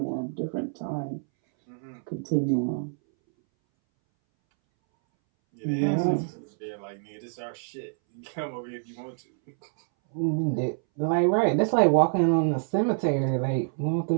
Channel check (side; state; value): left; silent; 60 dB below the other